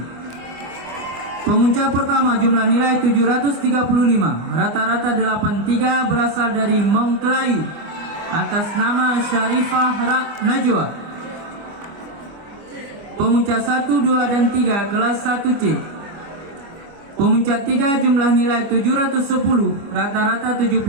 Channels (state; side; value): late; left; 24 ms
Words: Pemuncak pertama jumlah nilai 735, rata-rata 83 berasal dari Mongklayu atas nama Syarifah Najwa. Pemuncak 1, 2, dan 3 kelas 1C. Pemuncak 3 jumlah nilai 710, rata-rata